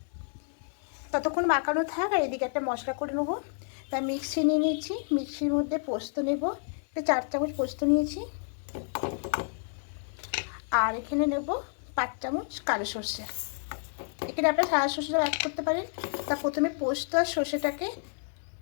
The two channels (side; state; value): right; silent; digital silence